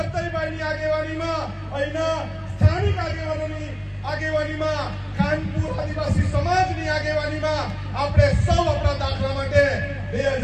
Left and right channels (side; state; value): both; identical; correlation 1.00